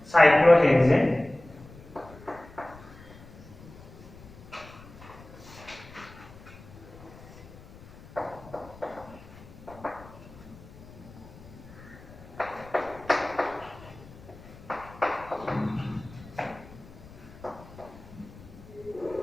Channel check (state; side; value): noise; left; rumble, 19 dB below the sound